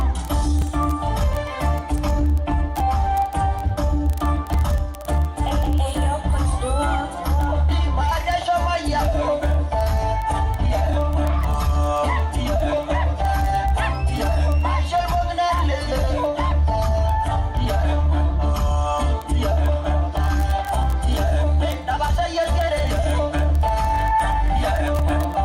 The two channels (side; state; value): both; identical; correlation 1.00